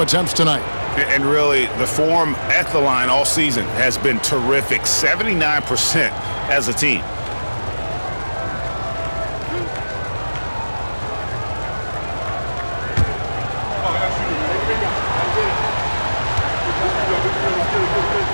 attempts tonight. And really, the form at the line all season has been terrific. 79% as a team.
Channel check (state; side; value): inverted; both; correlation -1.00